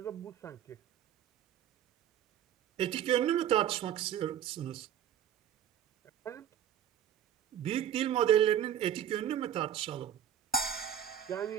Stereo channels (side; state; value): left; quieter; 10.0 dB